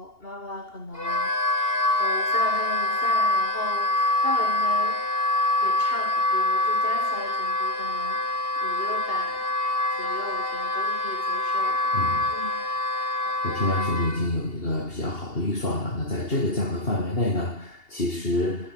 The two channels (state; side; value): late; right; 2.8 ms